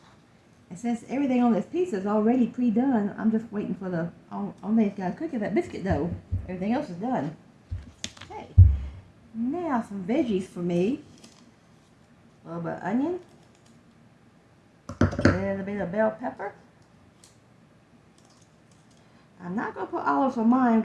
And since everything on this pizza is already pre-done, I'm just waiting for the only thing that's got to cook is that biscuit dough. Everything else is done. Okay, now some veggies for me. A little bit of onion, a little bit of bell pepper. I'm not going to put olives on mine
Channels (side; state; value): both; identical; correlation 1.00